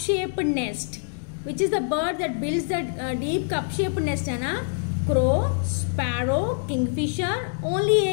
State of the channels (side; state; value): right; silent; digital silence